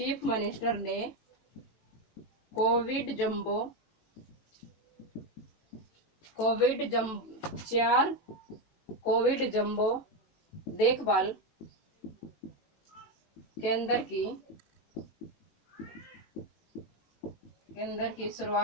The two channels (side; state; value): right; late; 18 ms